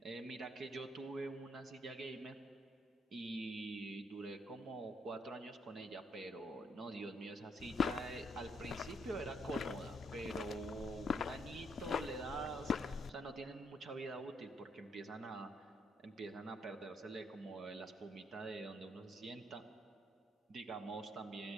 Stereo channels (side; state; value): both; normal; correlation 0.74